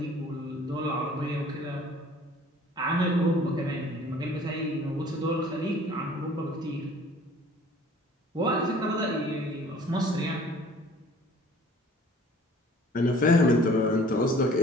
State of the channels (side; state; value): both; normal; correlation 0.51